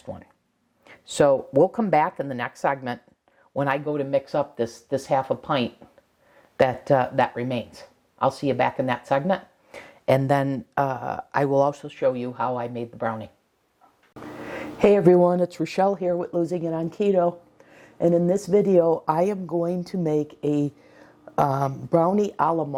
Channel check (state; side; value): identical; both; correlation 1.00